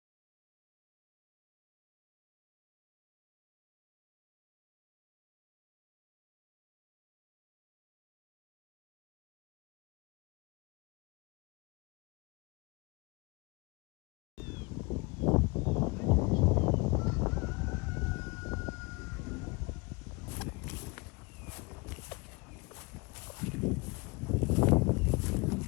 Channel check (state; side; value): quieter; right; 27.3 dB